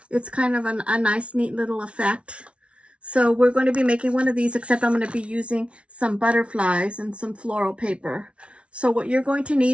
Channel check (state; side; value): late; left; 0.061 ms